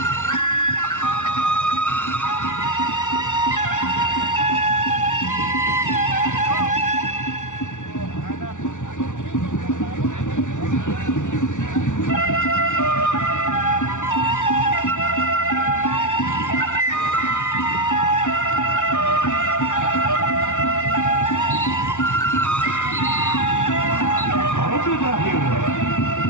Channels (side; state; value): right; late; 0.86 ms